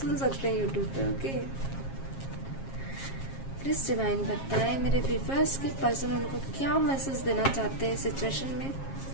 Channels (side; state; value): right; late; 7.4 ms